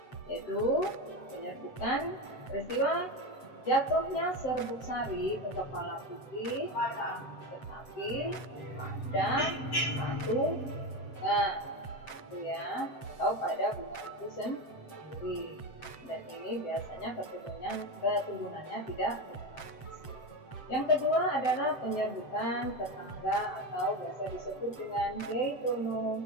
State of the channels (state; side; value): late; right; 7.7 ms